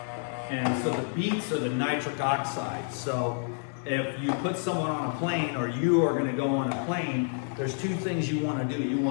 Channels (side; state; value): right; silent; 59 dB below the other